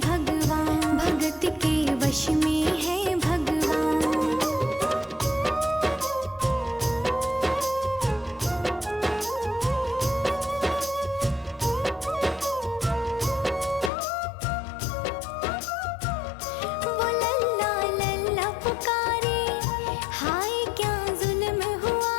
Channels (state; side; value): drops out; right; at 13.9 s